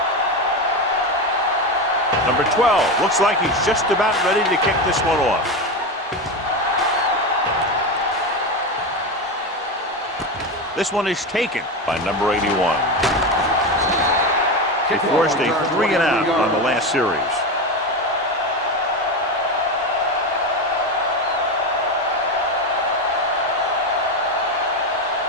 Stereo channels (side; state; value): both; normal; correlation 0.17